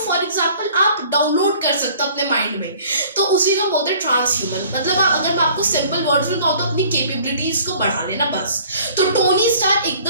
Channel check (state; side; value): inverted; both; correlation -0.51